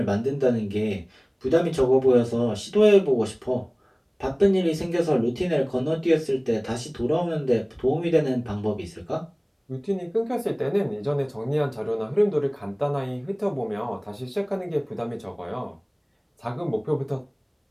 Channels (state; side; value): identical; both; correlation 1.00